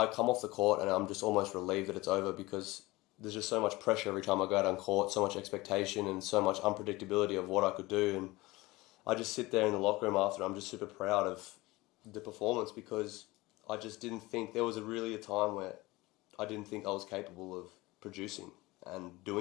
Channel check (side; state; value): right; quieter; 20.8 dB